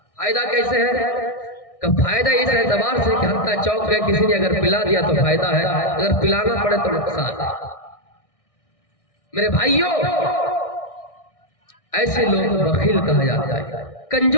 فائدہ کیسے ہے؟ کہ فائدہ اس اعتبار سے کہ حتیٰ چوک گئے کسی نے اگر پلا دیا تو فائدہ ہے، اگر پلانا پڑے تو نقصان ہے۔ میرے بھائیوں ایسے لوگ بخیل کہا جاتا ہے،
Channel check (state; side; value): late; right; 1.6 ms